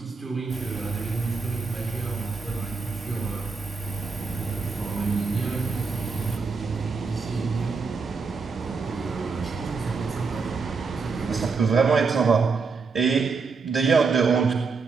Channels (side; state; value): left; quieter; 4.8 dB